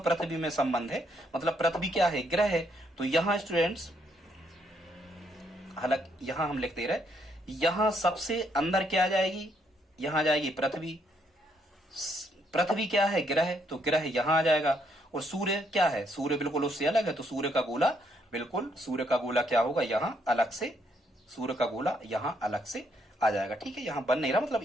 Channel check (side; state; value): both; normal; correlation 0.73